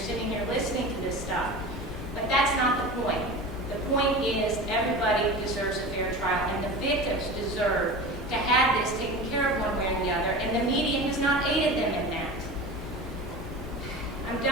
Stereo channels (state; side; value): normal; both; correlation 0.32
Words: here listening to this stuff. But that's not the point. The point is everybody deserves a fair trial, and the victims deserve to have this taken care of one way or the other, and the media has not aided them in that. I'm